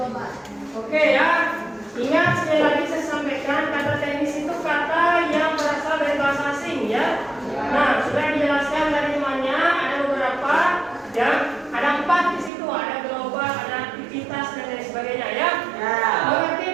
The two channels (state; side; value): drops out; left; at 12.5 s